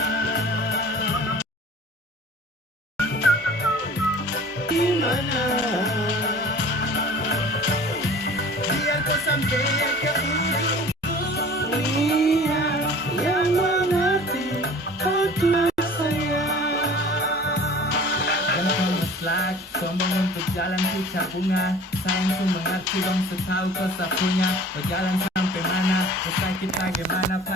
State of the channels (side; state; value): both; normal; correlation 0.45